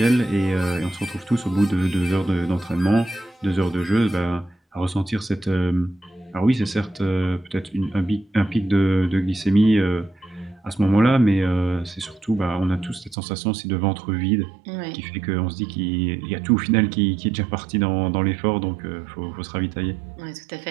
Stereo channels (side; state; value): left; drops out; at 13.2 s